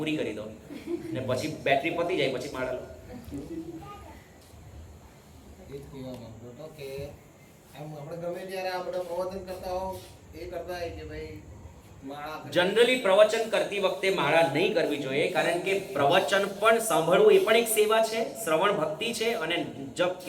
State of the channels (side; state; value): both; identical; correlation 1.00